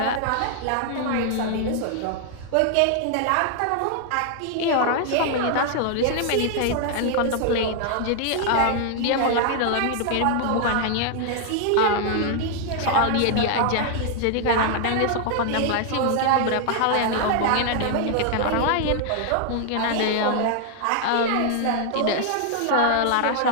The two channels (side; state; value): both; different; correlation 0.00